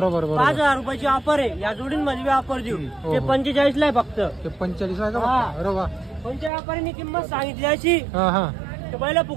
रुपयाची ऑफर आहे, या जोडींमध्ये बी ऑफर देऊ। ते 45 ला आहे फक्त, 45 आहे का? अरे वा, कोणत्या व्यापाऱ्यांनी किंमत सांगितली अशी पहिला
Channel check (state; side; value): drops out; left; at 6.5 s